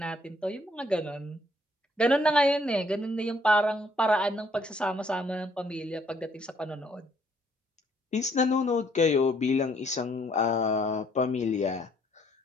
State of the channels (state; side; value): normal; both; correlation 0.66